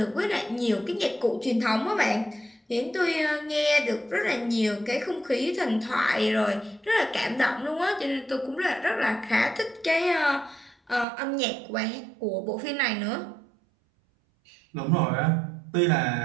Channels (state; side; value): drops out; left; at 11.1 s